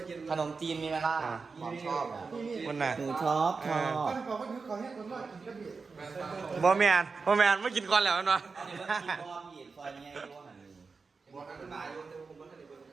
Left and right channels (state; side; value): quieter; left; 4.6 dB